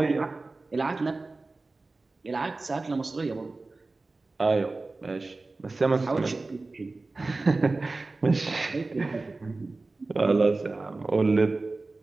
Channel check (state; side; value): quieter; left; 3.4 dB